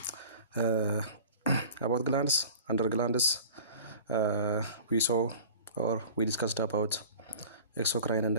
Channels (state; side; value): inverted; both; correlation -0.42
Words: about glands, under glands. We saw or we discussed about exocrine and